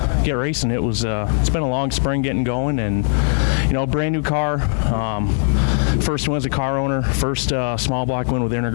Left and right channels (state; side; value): silent; right; 61 dB below the other